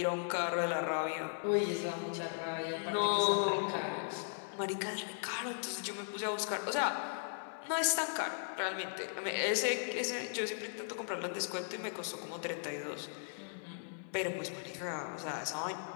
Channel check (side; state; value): right; silent; 53 dB below the other